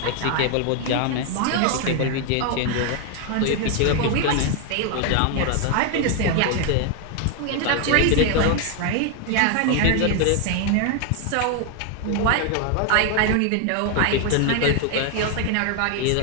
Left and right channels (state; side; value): different; both; correlation 0.01